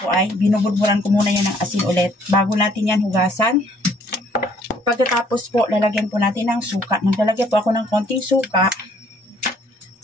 ay binubudburan ko muna yan ng asin ulit bago natin yan hugasan. Pagkatapos po, lalagyan po natin ng suka. Naglalagay po ako ng konting suka.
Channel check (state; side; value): normal; both; correlation 0.62